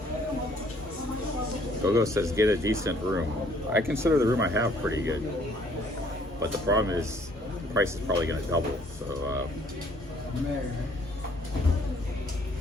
Go-Go says get a decent room. I consider the room I have pretty good, but the problem is the price is probably going to double. So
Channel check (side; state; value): both; normal; correlation 0.62